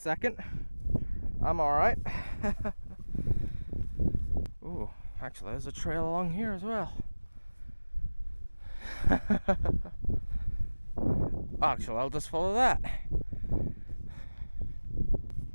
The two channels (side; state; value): both; inverted; correlation -1.00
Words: I'm alright. Ooh, actually there's a trail along here as well. Actually, I'll just follow that.